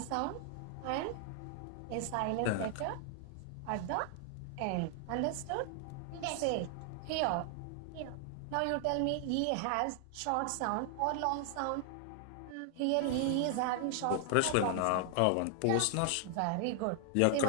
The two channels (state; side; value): different; both; correlation 0.00